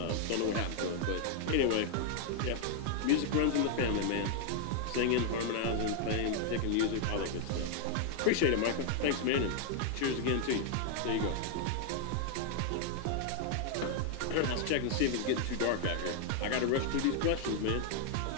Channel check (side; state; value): both; different; correlation 0.00